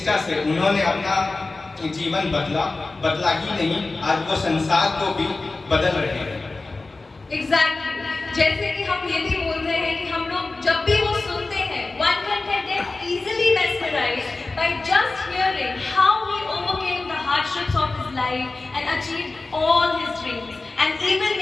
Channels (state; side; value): quieter; right; 3.4 dB